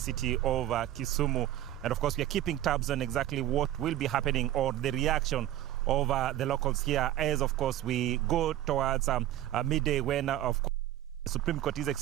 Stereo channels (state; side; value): quieter; left; 13.1 dB